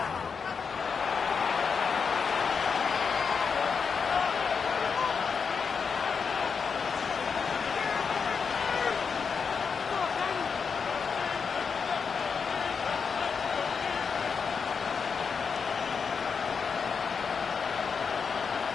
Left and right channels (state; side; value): quieter; right; 5.8 dB